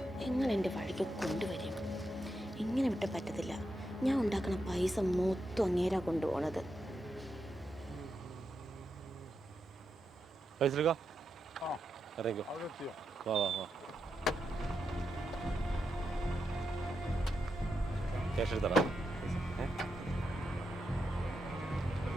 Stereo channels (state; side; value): normal; both; correlation 0.85